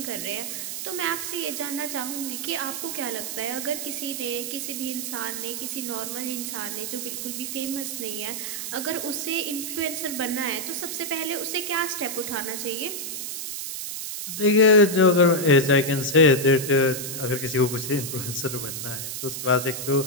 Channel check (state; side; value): noise; right; hiss, 5 dB below the sound